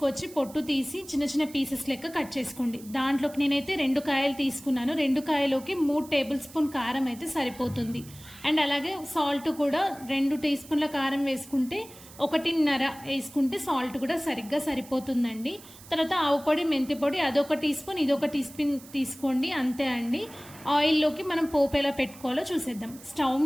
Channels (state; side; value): noise; right; hiss, 20 dB below the sound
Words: పొట్టు తీసి చిన్న చిన్న పీసెస్ లెక్క కట్ చేసుకోండి. దాంట్లోకి నేనైతే 2 కాయలు తీసుకున్నాను. 2 కాయలోకి 3 టేబుల్ స్పూన్ కారం అయితే సరిపోతుంది. అండ్ అలాగే సాల్ట్ కూడా 2 టీ స్పూన్ల కారం వేసుకుంటే 1.5 వేసుకుంటే సాల్ట్ కూడా సరిగ్గా సరిపోతుందండి. తర్వాత ఆవు పొడి, మెంతి పొడి అదొక టీ స్పూన్, ఇదొక టీ స్పూన్ తీసుకోండి, అంతే అండి. ఆయిల్లోకి మనం పోపు ఎలా పెట్టుకోవాలో చూసేద్దాం. స్టవ్